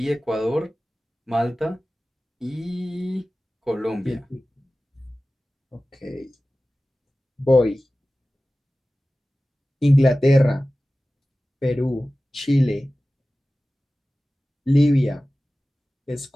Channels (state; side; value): normal; both; correlation 0.96